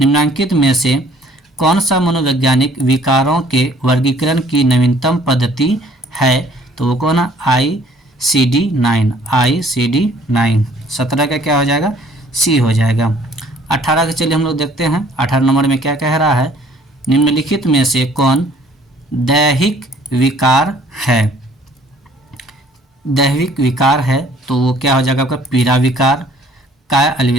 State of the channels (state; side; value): normal; both; correlation 0.58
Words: में से कौन सा मनोवैज्ञानिक विकारों के वर्गीकरण की नवीनतम पद्धति है तो वो कौन है, ICD-9, ICD-9। 17 का क्या हो जाएगा, सी हो जाएगा। 18 के चलिए हम लोग देखते हैं। 18 नंबर में क्या कह रहा है, निम्नलिखित में से कौन दैहिक विकार है। दैहिक विकार है तो वो क्या हो जाएगा आपका, पीड़ा विकार, काय